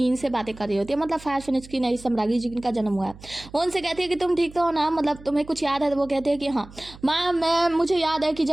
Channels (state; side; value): noise; right; hum, 19 dB below the sound